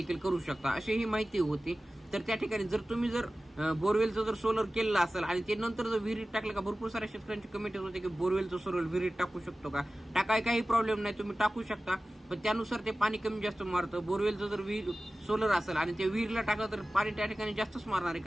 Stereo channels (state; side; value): normal; both; correlation 0.96